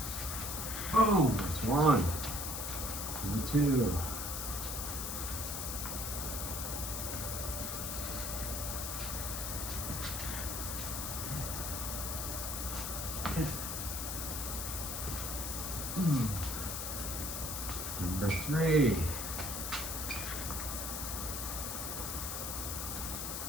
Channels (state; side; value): noise; left; hiss, 3 dB below the sound